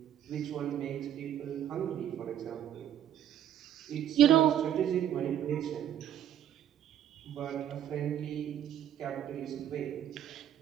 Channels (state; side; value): quieter; left; 10.5 dB